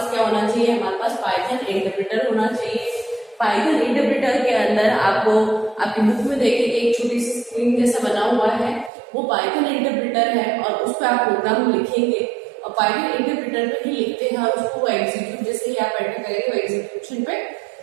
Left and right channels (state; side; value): drops out; left; at 8.9 s